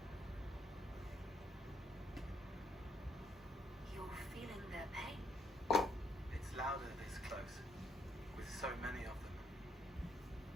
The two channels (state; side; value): normal; both; correlation 0.73